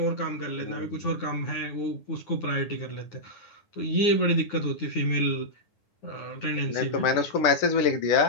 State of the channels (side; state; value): right; late; 9.5 ms